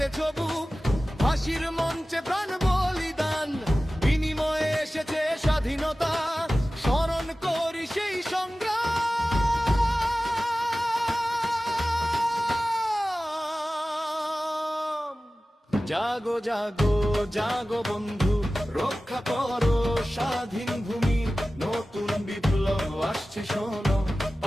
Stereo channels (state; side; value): normal; both; correlation 0.96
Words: বুক, ফাঁসির মঞ্চে প্রাণ বলিদান, বিনিময়ে এসেছে স্বাধীনতা, স্মরণ করি সেই সংগ্রাম। জাগো জাগো জাগো বন্ধু, রক্ষা করো স্বাধীন ভূমি, নতুন বিপ্লব আসছে শোনো,